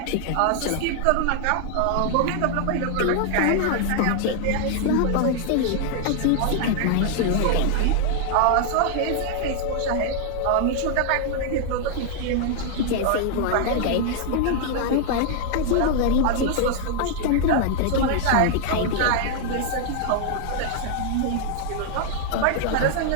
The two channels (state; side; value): different; both; correlation -0.01